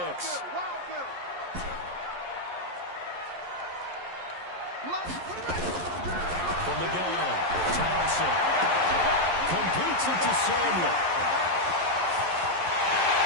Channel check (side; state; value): left; late; 11 ms